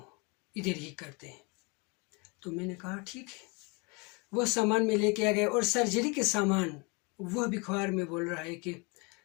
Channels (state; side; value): quieter; right; 30.2 dB